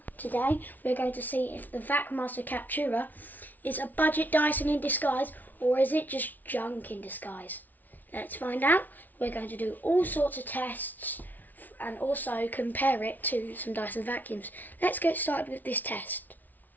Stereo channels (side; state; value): right; late; 0.081 ms